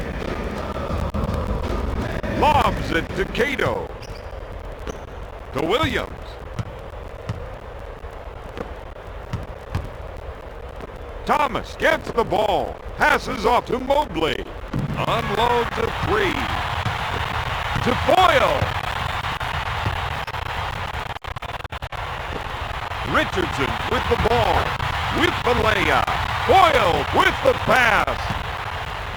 Lobs it to Cato. To Williams. Thomas gets the ball. Passes off to Mobley. Unloads a three. To Boyle. Richardson with the ball. With the layup. Boyle with the pass.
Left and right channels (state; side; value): identical; both; correlation 1.00